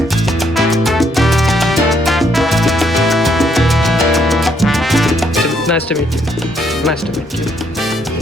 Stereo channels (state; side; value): normal; both; correlation 0.71